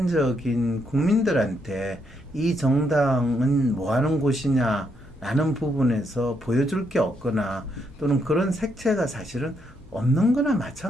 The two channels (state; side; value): normal; both; correlation 0.76